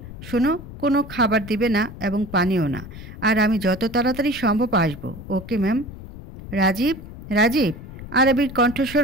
শোনো, কোনো খাবার দিবে না এবং পানিও না, আর আমি যত তাড়াতাড়ি সম্ভব আসবো। Okay ma'am. রাজীব, রাজীব। আরাবির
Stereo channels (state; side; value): noise; left; rumble, 13 dB below the sound